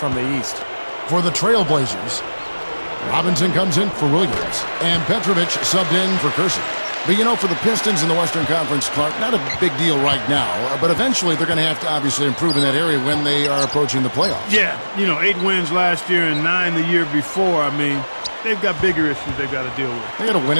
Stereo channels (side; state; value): both; inverted; correlation -1.00